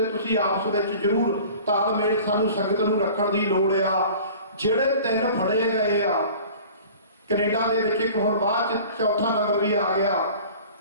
ਤੁਸੀਂ ਆਪਸ ਵਿੱਚ ਜ਼ਰੂਰ ਤਾਲਮੇਲ ਸਾਨੂੰ ਸੰਗਤ ਨੂੰ ਰੱਖਣ ਦੀ ਲੋੜ ਆ। ਜਿਹੜੇ 3 ਫੜੇ ਗਏ ਆ ਕੈਨੇਡਾ ਦੇ ਵਿੱਚ, ਇੱਕ ਹੁਣ ਬਾਅਦ ਚ 4ਥਾ ਨੰਬਰ ਵੀ ਆ ਗਿਆ,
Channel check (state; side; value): inverted; both; correlation -0.44